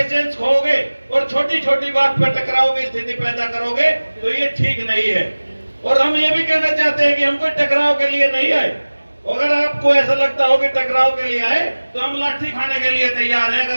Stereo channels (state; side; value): inverted; both; correlation -1.00